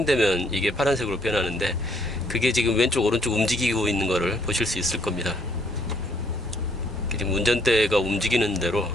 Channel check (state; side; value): normal; both; correlation 0.67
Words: 이게 파란색으로 변하는데, 그게 지금 왼쪽 오른쪽 움직이고 있는 거를 보실 수 있을 겁니다. 지금 운전대가 움직이는 대로